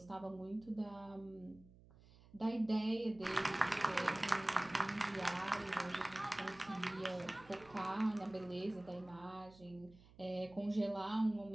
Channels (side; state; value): right; noise; hum, 23 dB below the sound